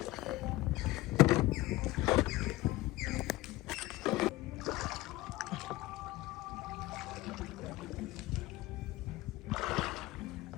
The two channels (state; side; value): quieter; right; 18.3 dB